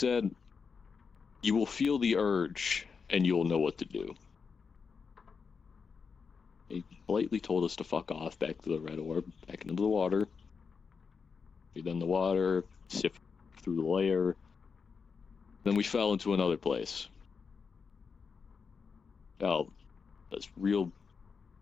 you will feel the urge, and you'll know what to do. He politely told us to fuck off back to the red orb, back into the water. Breathe in the water, sift through the layer. Then we fell into another place. Fell this real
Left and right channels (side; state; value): right; quieter; 5.6 dB